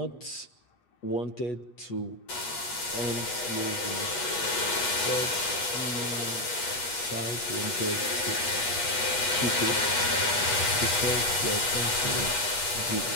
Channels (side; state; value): right; late; 8.3 ms